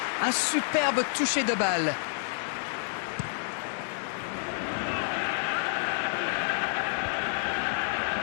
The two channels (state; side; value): silent; right; digital silence